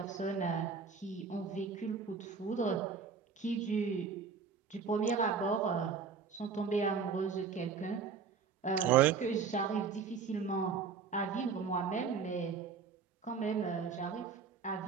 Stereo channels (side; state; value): left; quieter; 5.7 dB